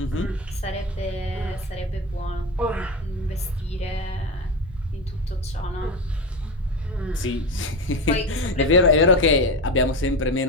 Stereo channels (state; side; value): normal; both; correlation 0.20